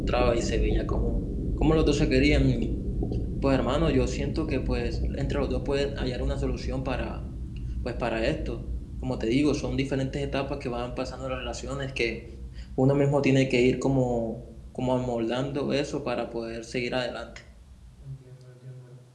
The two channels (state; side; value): identical; both; correlation 1.00